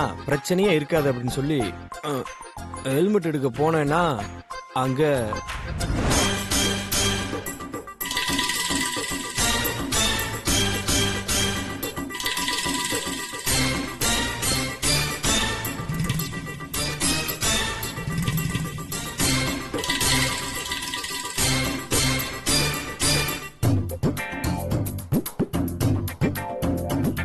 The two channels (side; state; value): both; identical; correlation 1.00